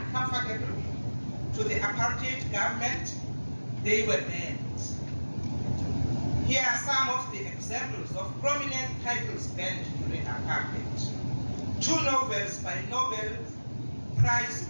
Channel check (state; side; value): inverted; both; correlation -1.00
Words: to the apartheid government, they were banned. Here are some of the examples of prominent titles banned during apartheid. 2 novels by Nobel